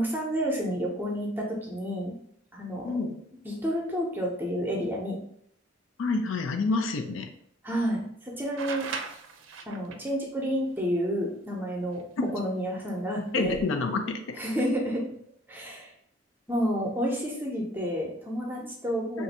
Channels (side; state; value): both; normal; correlation 0.57